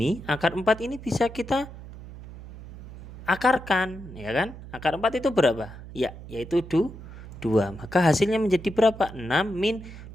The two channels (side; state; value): right; noise; hum, 14 dB below the sound